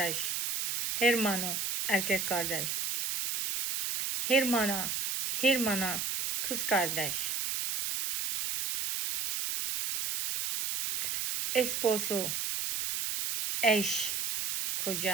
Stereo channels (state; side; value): noise; right; hiss, 1 dB below the sound